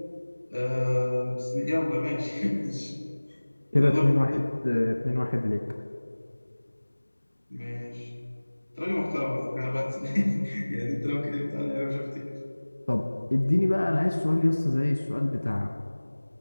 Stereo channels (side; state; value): both; inverted; correlation -1.00